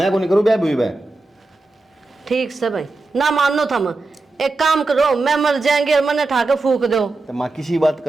को नहीं करूँ ब्याह भी। ठीक से भाई ना मानो थम, एक काम करो, मैं मर जाएंगे और मैंने ठाकर फूक दो। तो माँ किसी बात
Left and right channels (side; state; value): left; quieter; 3.3 dB